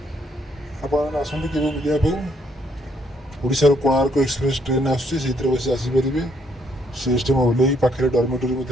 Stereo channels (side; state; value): both; normal; correlation 0.69